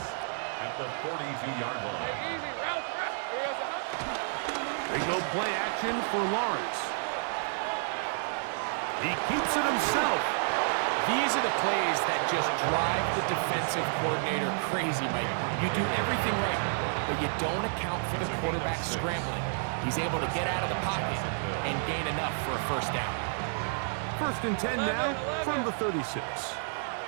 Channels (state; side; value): silent; left; digital silence